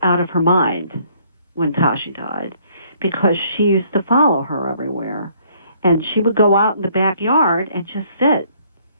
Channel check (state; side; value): inverted; both; correlation -0.63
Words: out of her mind when Tashi died because she used to follow her everywhere. And she would go out in the backyard and just sit.